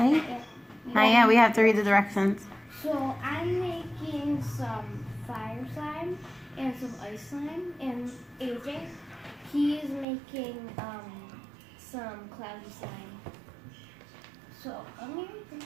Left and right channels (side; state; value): left; drops out; at 10.1 s